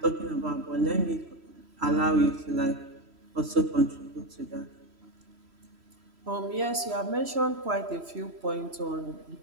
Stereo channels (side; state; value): left; late; 3.1 ms